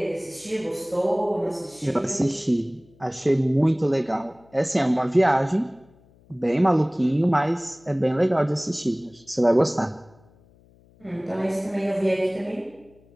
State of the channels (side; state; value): left; noise; hum, 29 dB below the sound